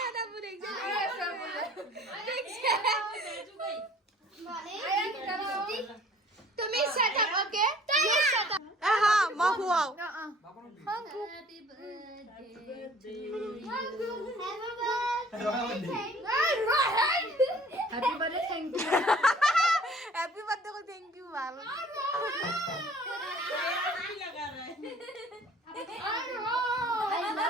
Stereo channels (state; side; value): normal; both; correlation 0.53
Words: তুমি সেট আপ ওকে হা মই খুৱাও happy birthday thank you happy birthday কো থ্যাংক ইউ ভাল आई